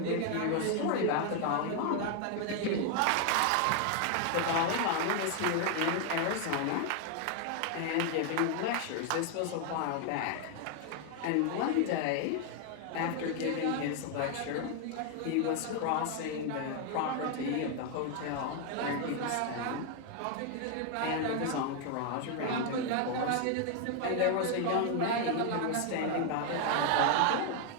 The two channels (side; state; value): both; different; correlation 0.00